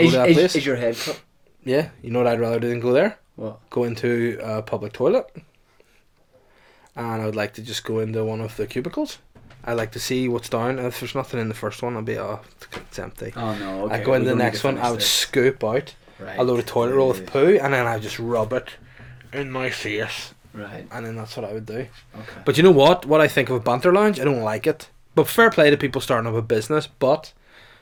to that place? Is your head cut? Yeah, you know what I'd rather do than go there? What? Go into a public toilet. And I would like to just go into one of the cubicles. I like to see what's down. If there's nothing in the first one, I'll be, it's empty. Oh no, okay. I'd go into the next one, I would scoop out Right. a load of toilet roll with poo, and then I'd just rub it in my face. Right. And then that's what I would do. Okay. But you know what? What I think of a banter lounge, I don't like it. But fair play to people starting up a business, but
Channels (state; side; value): identical; both; correlation 1.00